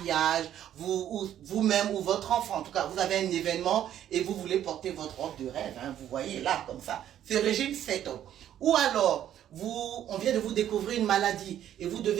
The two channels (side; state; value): left; quieter; 11.0 dB